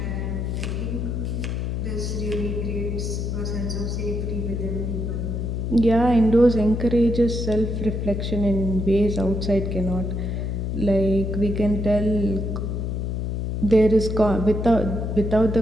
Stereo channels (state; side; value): noise; left; hum, 2 dB below the sound